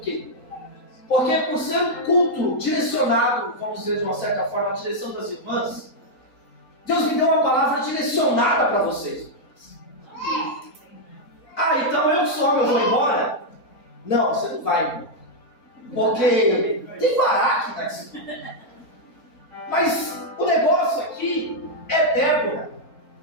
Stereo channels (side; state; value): right; late; 4.0 ms